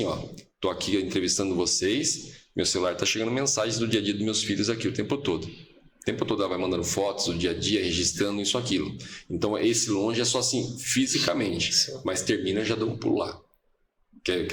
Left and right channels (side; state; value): both; identical; correlation 1.00